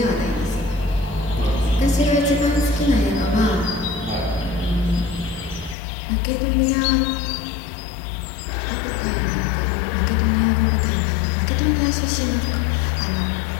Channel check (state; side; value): drops out; right; at 5.8 s